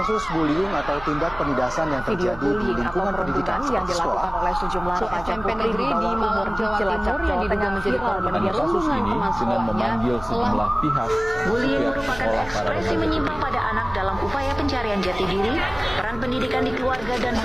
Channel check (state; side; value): noise; right; hum, 17 dB below the sound